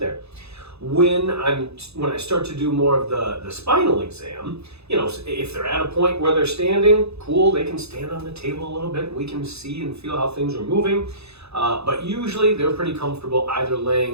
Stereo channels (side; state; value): left; late; 0.79 ms